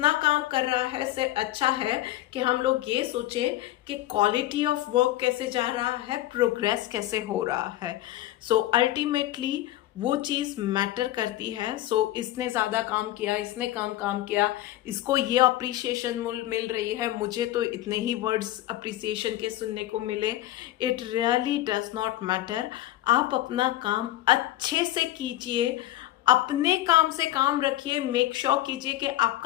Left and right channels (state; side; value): quieter; right; 15.0 dB